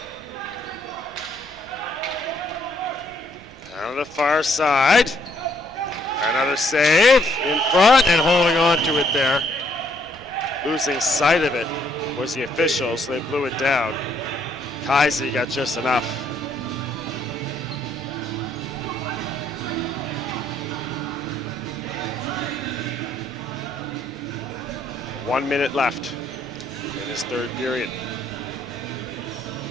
Down the far side. Another save in front and holding on to it there. Losing sight of it was the official, so they blew it down. Kaisi got just enough. One minute left in his third period.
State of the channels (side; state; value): both; normal; correlation 0.69